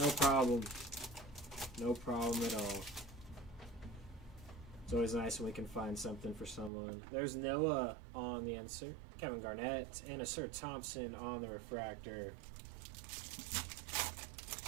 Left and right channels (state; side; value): drops out; left; at 6.7 s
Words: problem. No problem at all. It's always nice when we can find something for someone. There's Noah on the insert, Kevin Garnett, and a Sir Thompson on the refractor.